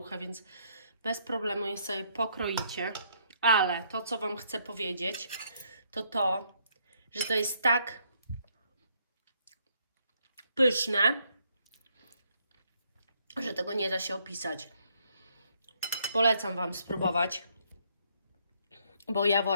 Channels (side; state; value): both; inverted; correlation -0.70